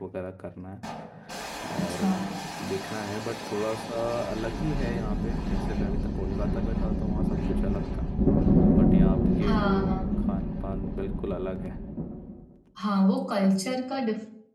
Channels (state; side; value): identical; both; correlation 1.00